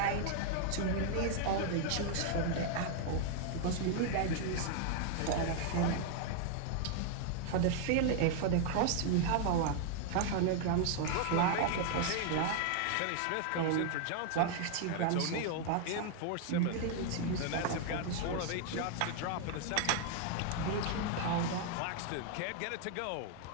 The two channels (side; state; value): both; different; correlation 0.00